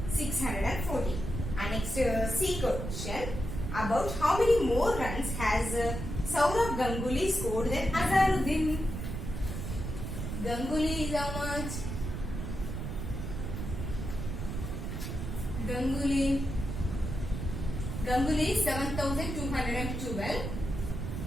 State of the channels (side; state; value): right; noise; rumble, 5 dB below the sound